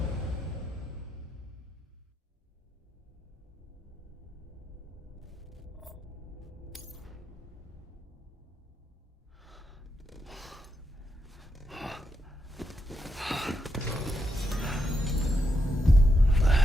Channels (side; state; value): both; normal; correlation 0.83